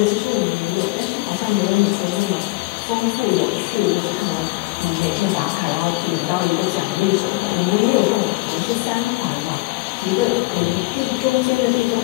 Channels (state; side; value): quieter; right; 23.5 dB